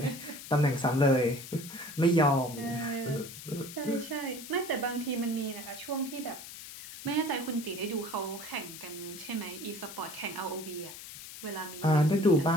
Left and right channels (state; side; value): noise; left; hiss, 13 dB below the sound